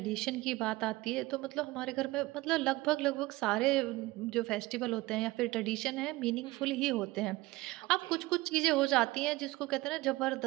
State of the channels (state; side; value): quieter; left; 19.9 dB